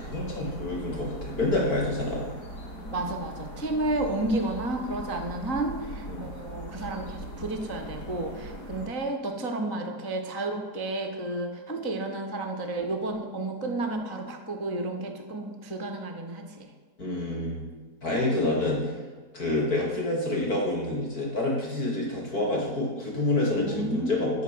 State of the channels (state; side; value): late; right; 4.0 ms